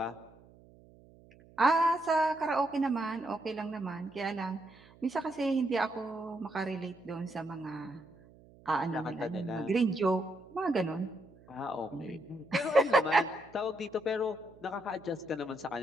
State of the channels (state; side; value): noise; right; hum, 25 dB below the sound